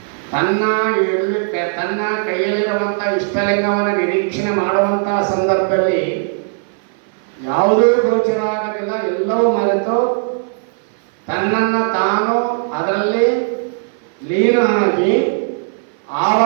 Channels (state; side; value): silent; left; 57 dB below the other